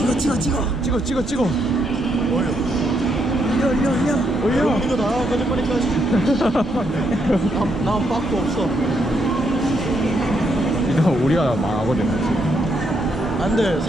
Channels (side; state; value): both; normal; correlation 0.76